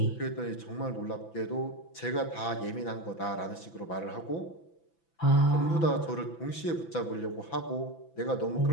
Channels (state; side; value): late; right; 6.0 ms